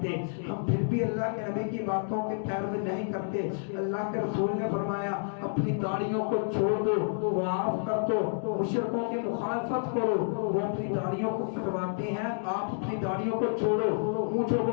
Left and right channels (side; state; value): right; silent; digital silence